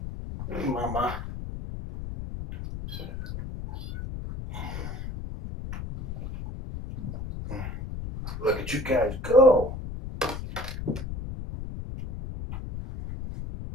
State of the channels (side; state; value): left; noise; rumble, 7 dB below the sound